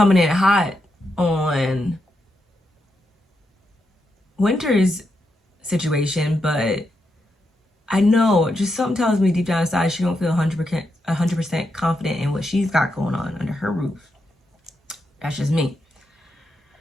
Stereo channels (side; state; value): both; normal; correlation 0.83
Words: in hot on Winter's situation, but I know just something tells me deep down inside she don't feel 100% confident in what she's got going on under her roof. That's just me.